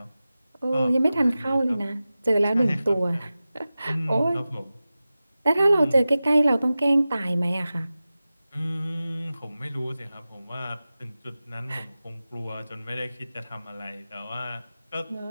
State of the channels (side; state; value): both; inverted; correlation -0.95